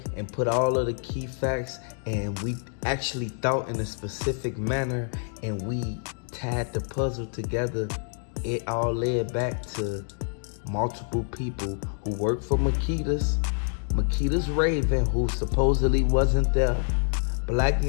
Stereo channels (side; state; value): right; silent; 60 dB below the other